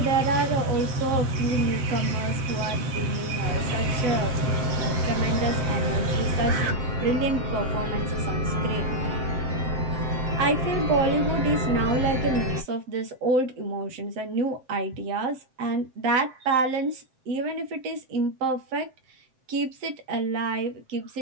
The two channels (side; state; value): left; late; 7.6 ms